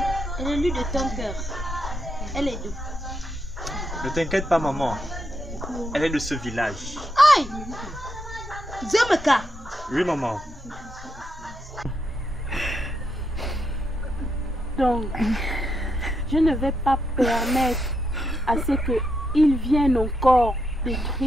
Elle est lui de ton cœur. Elle est d'où? Ne t'inquiète pas, maman. Elle est de ce village. Aïe! Zemeka! Oui, maman. Donc, je ne vais pas permettre à ce qu'ils viennent encore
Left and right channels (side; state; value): both; normal; correlation 0.81